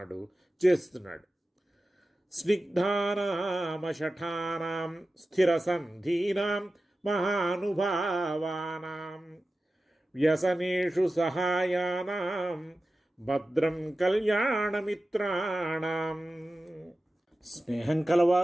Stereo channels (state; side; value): normal; both; correlation 0.94